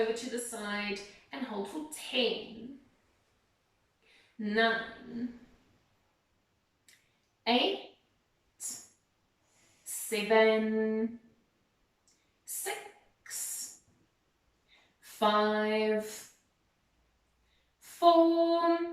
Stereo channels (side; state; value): both; identical; correlation 1.00